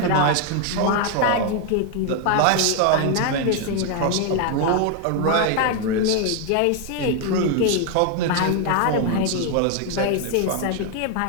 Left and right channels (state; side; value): different; both; correlation 0.01